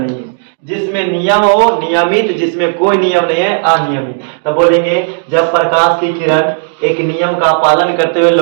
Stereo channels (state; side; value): silent; left; digital silence